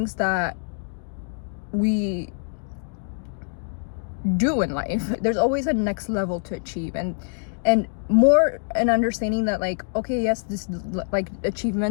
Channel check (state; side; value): silent; right; 62 dB below the other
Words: that we do in life. There's always a next level to achieve, and more an understanding that like, okay, yes, this like